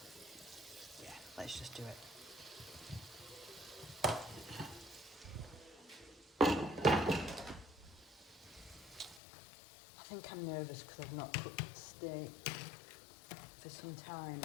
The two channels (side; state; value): right; drops out; at 9.2 s